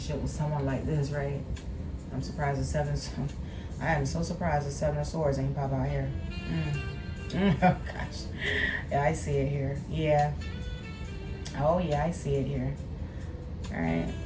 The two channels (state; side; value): identical; both; correlation 1.00